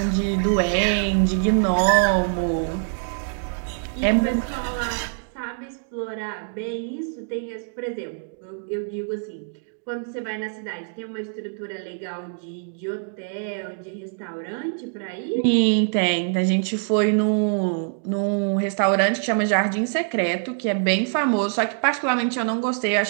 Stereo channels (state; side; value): silent; left; 62 dB below the other